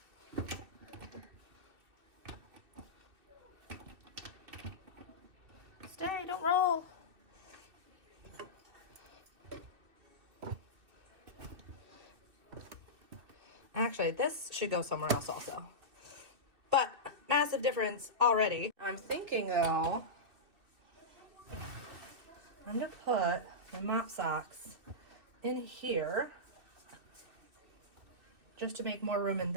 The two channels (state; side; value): late; left; 2.6 ms